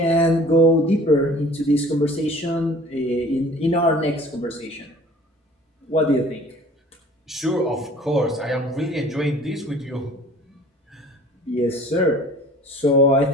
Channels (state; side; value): normal; both; correlation 0.49